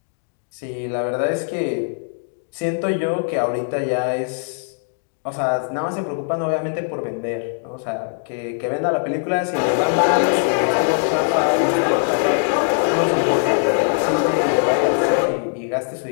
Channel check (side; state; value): right; silent; digital silence